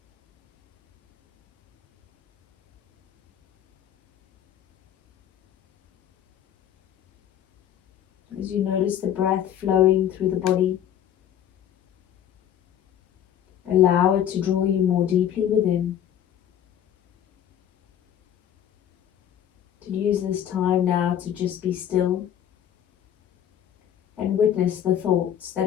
As you notice the breath flowing through the body, allow it to draw you more deeply within. To use this time now to just be still and witness the thoughts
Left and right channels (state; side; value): quieter; right; 10.1 dB